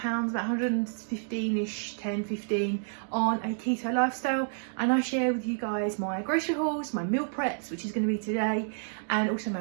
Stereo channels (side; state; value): left; silent; digital silence